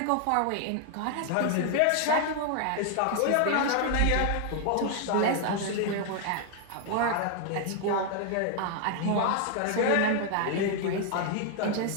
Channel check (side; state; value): both; different; correlation 0.00